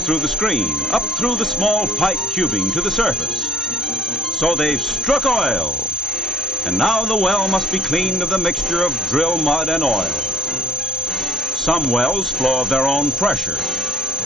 the screen, up through the small pipe tubing to the surface. So they've struck oil, and now the well must be cleaned of the mixture of drill mud and oil. Some wells flow of their own pressure.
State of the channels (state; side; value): normal; both; correlation 0.54